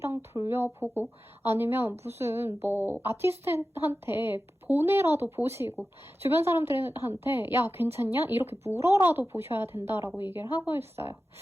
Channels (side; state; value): both; normal; correlation 0.94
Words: 돌려보고 아니면 무슨 뭐 아티스트한테 보내라도 보시고 주변 사람들한테 야 괜찮냐? 이렇게 물어라도 보셔야 된다라고 얘기를 하고 있어요.